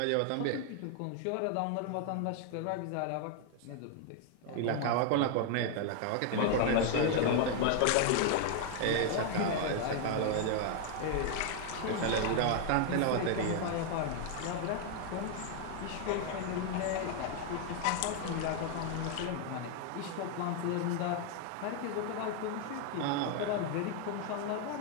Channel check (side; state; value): both; different; correlation 0.00